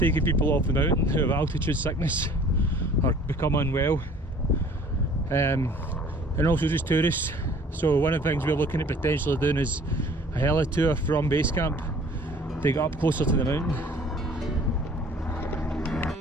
people off the mountain who have altitude sickness or become unwell, and also just tourists. So one of the things we're looking at potentially doing is a heli tour from base camp to get up closer to the mountain.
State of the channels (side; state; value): both; normal; correlation 0.52